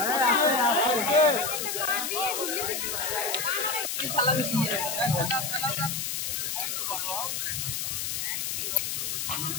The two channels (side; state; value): left; noise; hiss, 2 dB below the sound